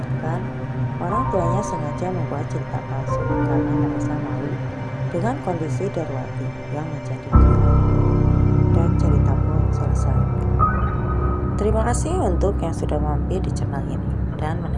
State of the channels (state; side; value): identical; both; correlation 1.00